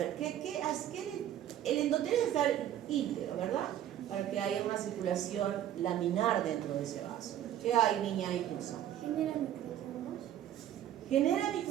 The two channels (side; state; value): left; quieter; 11.5 dB